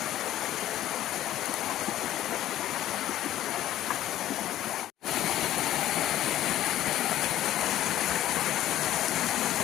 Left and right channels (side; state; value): right; quieter; 13.1 dB